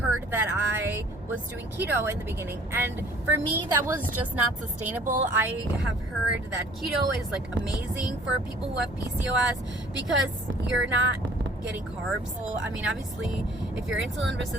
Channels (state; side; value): normal; both; correlation 0.54